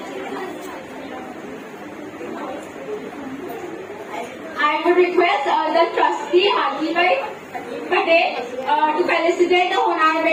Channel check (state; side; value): identical; both; correlation 1.00